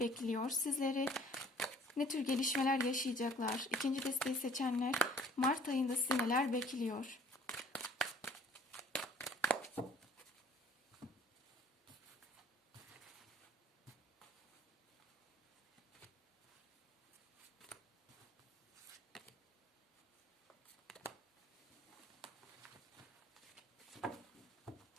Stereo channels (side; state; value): both; normal; correlation 0.55